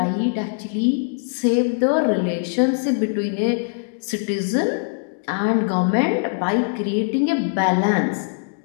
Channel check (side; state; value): right; silent; digital silence